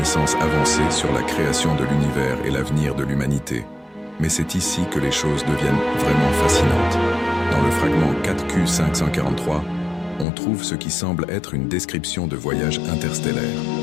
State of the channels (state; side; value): drops out; right; at 10.2 s